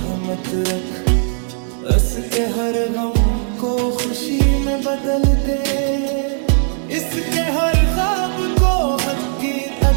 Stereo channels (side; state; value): left; silent; 66 dB below the other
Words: रख, उसके हर गम को खुशी में बदल दे, इसके हर ख्वाब को